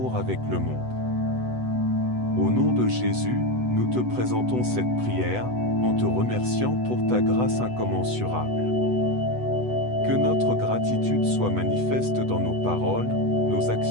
avec le monde. Au nom de Jésus, nous te présentons cette prière, en te remerciant pour ta grâce incommensurable. Que notre gratitude soit manifeste dans nos paroles, nos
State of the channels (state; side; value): late; left; 8.0 ms